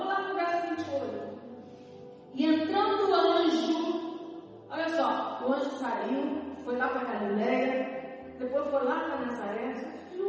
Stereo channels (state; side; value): identical; both; correlation 1.00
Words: lá no verso 28. E entrando o anjo, olha só, o anjo saiu, foi lá para Galileia, depois foi lá para Nazaré,